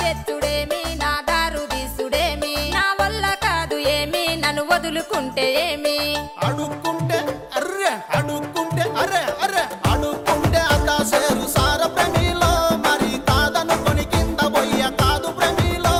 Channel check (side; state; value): both; identical; correlation 1.00